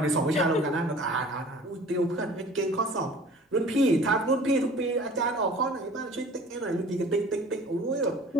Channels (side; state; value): both; normal; correlation 0.46